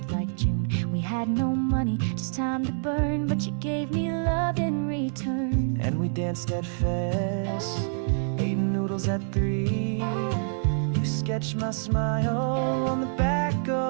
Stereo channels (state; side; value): silent; left; digital silence